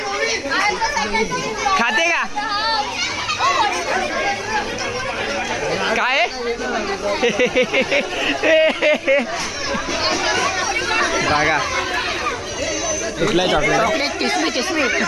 खाते का काय बघा कुठला चॉकलेट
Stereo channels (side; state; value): both; identical; correlation 1.00